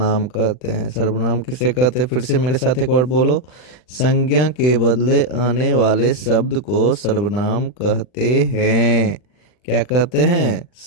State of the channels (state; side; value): late; right; 40 ms